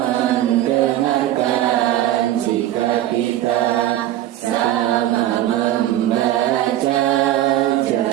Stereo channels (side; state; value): left; quieter; 13.4 dB